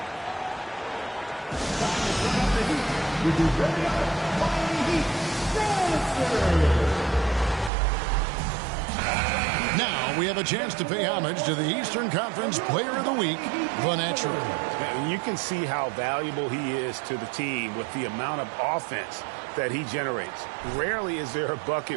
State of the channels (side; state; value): left; drops out; at 7.7 s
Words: Now we have a chance to pay homage to the Eastern Conference Player of the Week, the Natural. And you can see how valuable he is to the team with the amount of offense that he generates. Rarely is there a